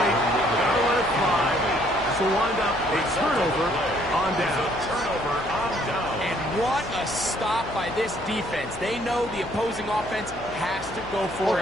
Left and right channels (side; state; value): left; noise; hum, 15 dB below the sound